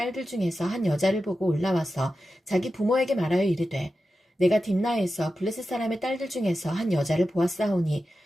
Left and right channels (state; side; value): normal; both; correlation 0.92